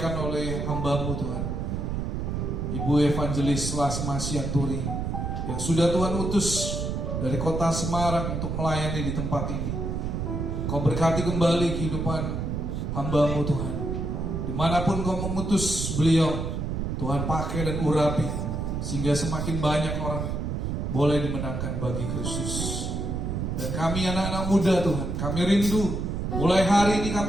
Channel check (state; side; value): noise; right; rumble, 2 dB below the sound